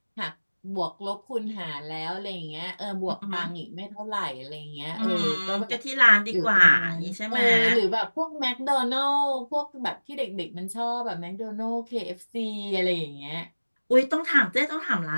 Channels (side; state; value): both; inverted; correlation -1.00